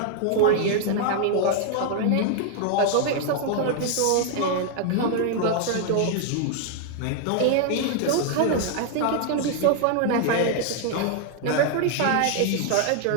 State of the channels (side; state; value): both; different; correlation 0.00